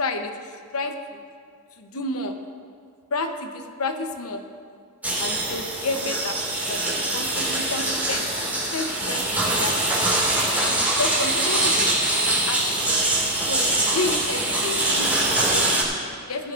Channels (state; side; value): normal; both; correlation -0.05